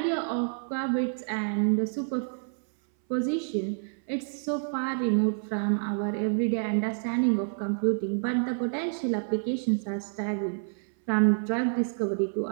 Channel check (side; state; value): left; silent; 59 dB below the other